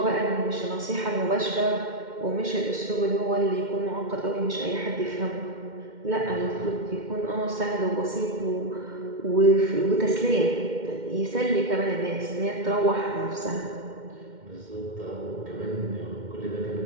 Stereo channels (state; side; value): late; left; 2.1 ms